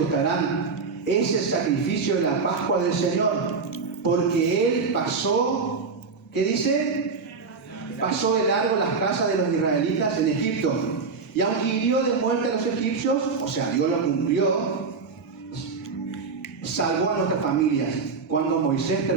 es el sacrificio de la Pascua del Señor, porque Él pasó, ¿qué dice? Pasó de largo las casas de los israelitas en Egipto. Y aunque hirió de muerte a los egipcios, o sea, Dios lo cumplió, salvó a nuestras familias. Cuando Moisés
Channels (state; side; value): quieter; left; 4.8 dB